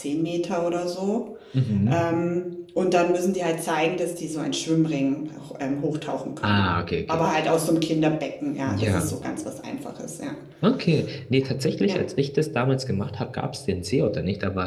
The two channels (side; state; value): both; identical; correlation 1.00